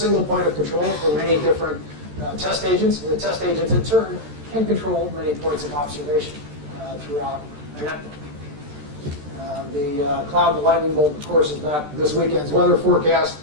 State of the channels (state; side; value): late; left; 13 ms